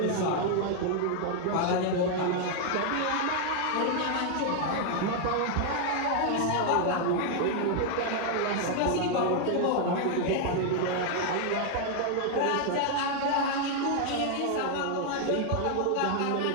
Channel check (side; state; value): both; different; correlation 0.00